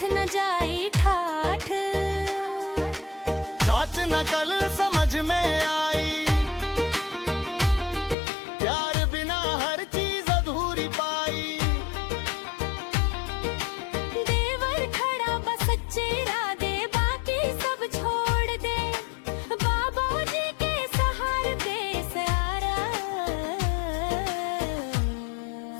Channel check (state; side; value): drops out; right; at 8.2 s